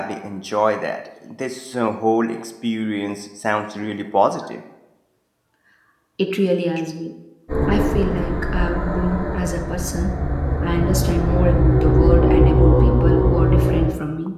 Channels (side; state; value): both; identical; correlation 1.00